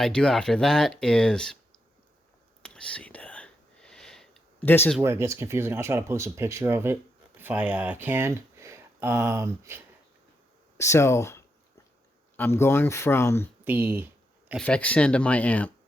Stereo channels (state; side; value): normal; both; correlation 0.82